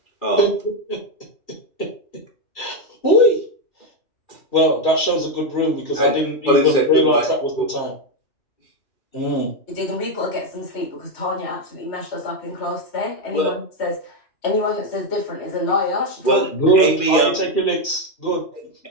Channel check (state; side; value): late; right; 2.7 ms